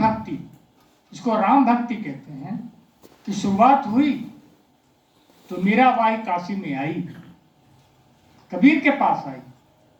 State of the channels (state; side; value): identical; both; correlation 1.00